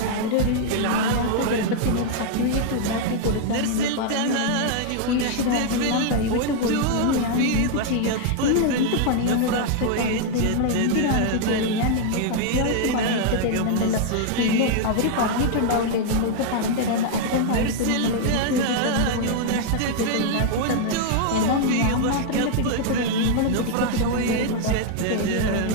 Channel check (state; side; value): different; both; correlation 0.00